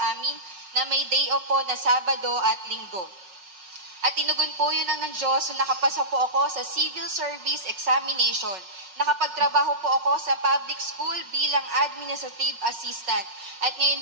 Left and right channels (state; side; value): late; left; 5.4 ms